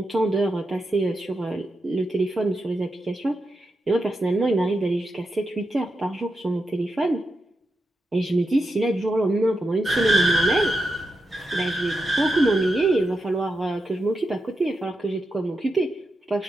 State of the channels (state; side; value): normal; both; correlation 0.87